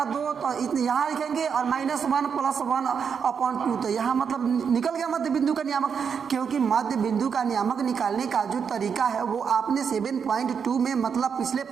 2, तो इतने यहाँ लिखेंगे और -1 + 1/2, तो यहाँ मतलब निकल गया मध्य बिंदु का नियामक। क्योंकि मध्य बिंदु का नियामक निकालने का जो तरीका है वो आपने 7.2 में मतलब पिछले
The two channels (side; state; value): left; quieter; 6.7 dB